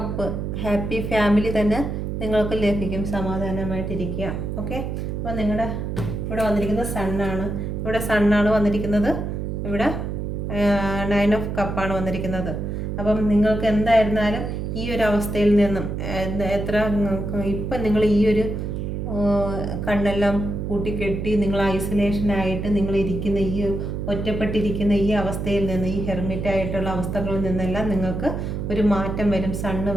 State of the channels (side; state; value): right; noise; hum, 4 dB below the sound